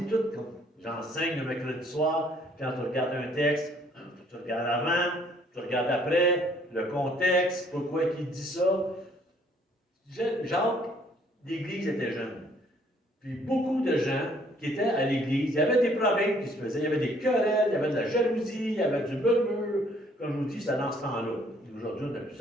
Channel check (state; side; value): normal; both; correlation 0.62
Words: tout, comme j'enseigne le mercredi soir, quand tu regardes un texte, tu regardes avant, tu regardes après, le contexte, pourquoi il dit ça. Jacques, l'Église était jeune. Puis beaucoup de gens qui étaient à l'Église, il y avait des problèmes qui se faisaient, il y avait des querelles, il y avait de la jalousie, il y avait du murmure. Comme je vous dis, c'était dans ce temps-là. Aujourd'hui, on n'a plus